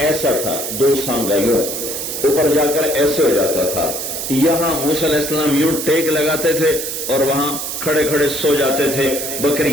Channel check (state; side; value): noise; right; hiss, 5 dB below the sound